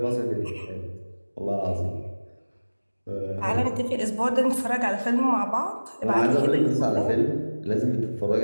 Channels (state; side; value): inverted; both; correlation -1.00